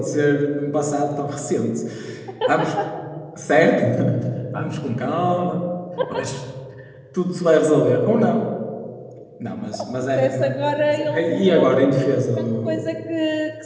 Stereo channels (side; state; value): both; identical; correlation 1.00